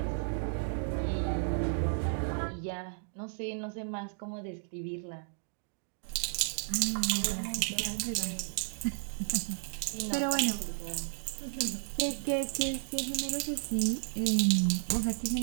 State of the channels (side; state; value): left; silent; digital silence